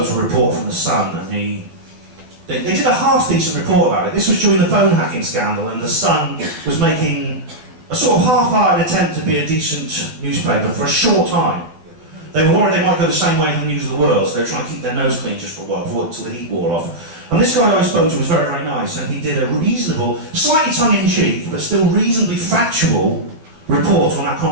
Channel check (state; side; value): late; left; 12 ms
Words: to a reporter from the Sun, and they did a half-decent report about it. This was during the phone hacking scandal, and the Sun was making a sort of half-hearted attempt to be a decent newspaper for a short time. They were worried they might go the same way as the News of the World, so they were trying to keep their nose clean just for a while, until the heat wore off. And this guy I spoke to was very, very nice, and he did a reasonable, slightly tongue-in-cheek, but still reasonably factual report on that